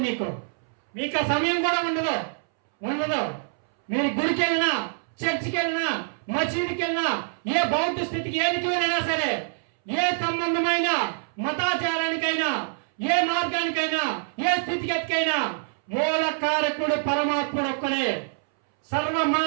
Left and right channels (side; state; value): left; silent; 61 dB below the other